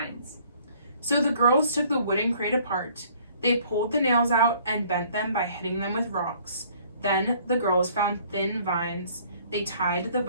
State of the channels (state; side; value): inverted; both; correlation -0.58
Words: So the girls took the wooden crate apart. They pulled the nails out and bent them by hitting them with rocks. Then the girls found thin vines. They tied the